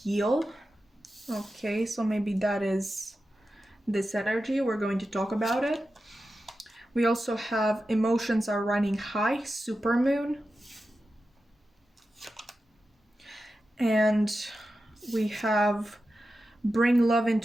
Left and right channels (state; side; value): normal; both; correlation 0.92